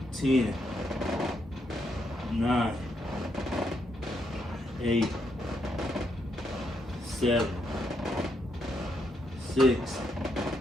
10, 9, 8, 7, 6,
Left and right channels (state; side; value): normal; both; correlation 0.78